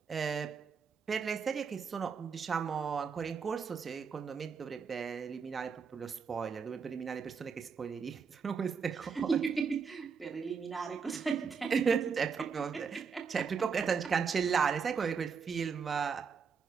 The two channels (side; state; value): left; quieter; 5.9 dB